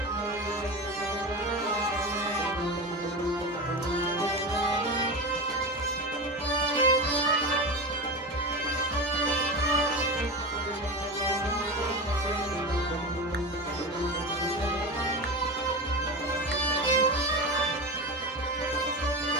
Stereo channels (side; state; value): both; normal; correlation 0.24